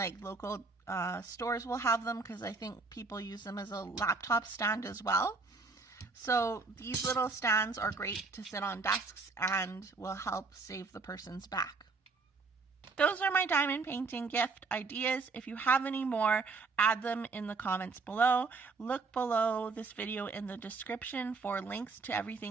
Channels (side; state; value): left; quieter; 4.2 dB